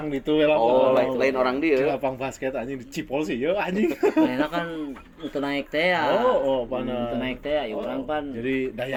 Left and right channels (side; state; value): both; identical; correlation 1.00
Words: ditu we lah. Oh lain orang dieu. Lapang basket anjing dicipol sih ieu anjing. Manehna kan teu naik teh ya. Oh pana. Teu naik teh ya urang pan. Jadi